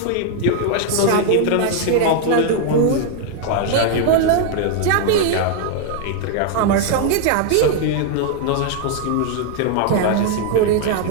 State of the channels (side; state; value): both; different; correlation 0.00